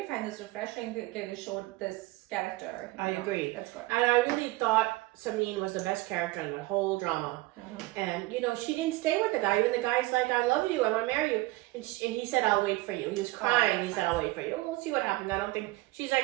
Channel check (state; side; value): quieter; left; 20.4 dB